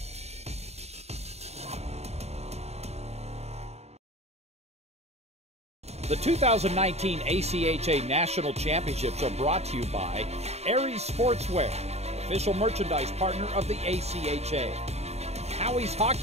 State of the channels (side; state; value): left; late; 0.31 ms